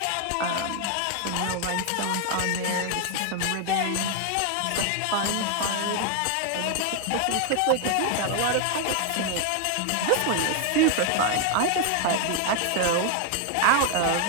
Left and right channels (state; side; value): different; both; correlation 0.00